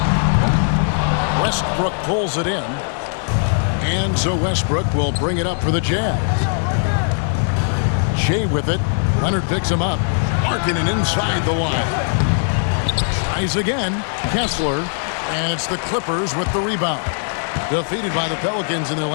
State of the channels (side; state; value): right; silent; digital silence